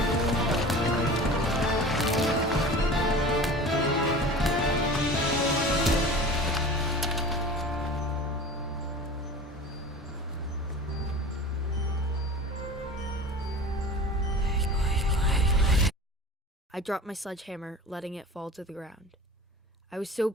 I dropped my sledgehammer, letting it fall to the ground. I was so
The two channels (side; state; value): both; normal; correlation 0.37